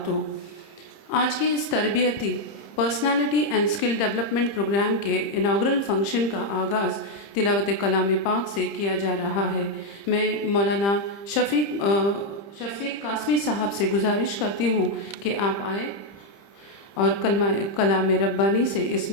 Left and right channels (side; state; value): right; late; 30 ms